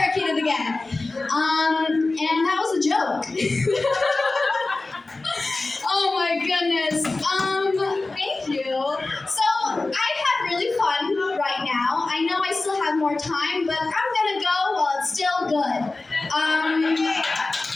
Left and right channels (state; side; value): quieter; right; 3.3 dB